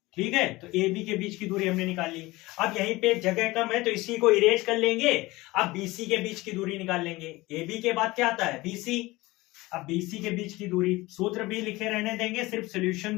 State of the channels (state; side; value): quieter; right; 20.5 dB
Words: ठीक है, तो ए बी के बीच की दूरी हमने निकाल ली। अब यहीं पे जगह कम है तो इसी को इरेज कर लेंगे। अब बीसी के बीच की दूरी निकाल लेंगे। ए बी के बाद क्या आता है बीसी। अब बीसी के बीच की दूरी, सूत्र भी लिखे रहने देंगे, सिर्फ सॉल्यूशन